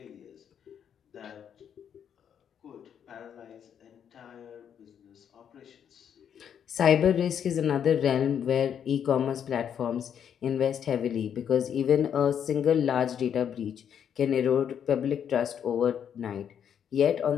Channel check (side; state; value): right; quieter; 8.5 dB